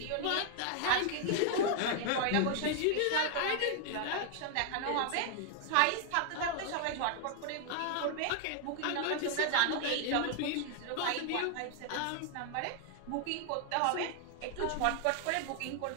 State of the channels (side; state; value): both; different; correlation 0.00